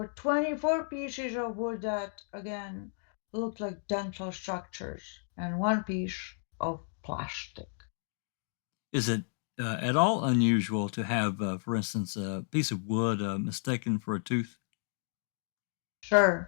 24 pieces of wood that, again, looked like dental structures, and 1 piece of plastic. Is it at all unusual to have, for instance, a piece of wood mistaken for a tooth?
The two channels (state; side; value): silent; right; digital silence